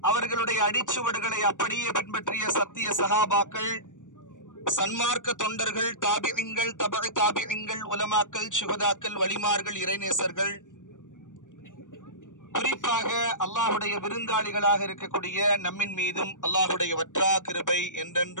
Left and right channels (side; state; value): right; late; 0.87 ms